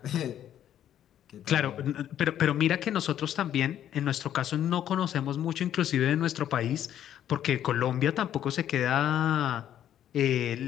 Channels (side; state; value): right; quieter; 10.8 dB